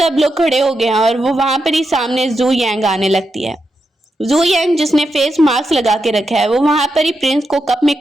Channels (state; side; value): normal; both; correlation 0.86